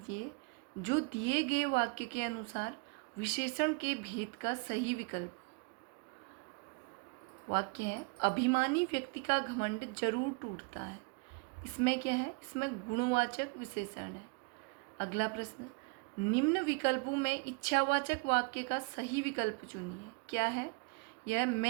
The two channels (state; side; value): quieter; left; 29.7 dB